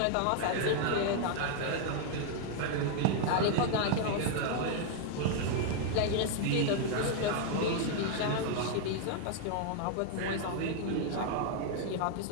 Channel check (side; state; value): both; different; correlation 0.00